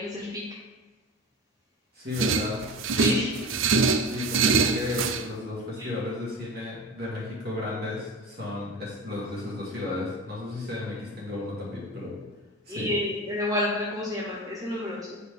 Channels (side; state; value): both; normal; correlation 0.30